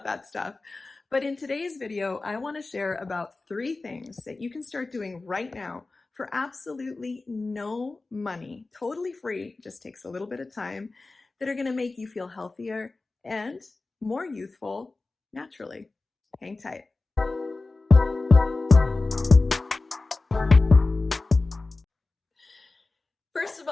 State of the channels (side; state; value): right; quieter; 3.5 dB